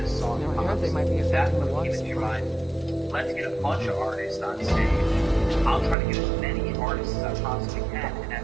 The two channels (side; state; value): left; drops out; at 6.0 s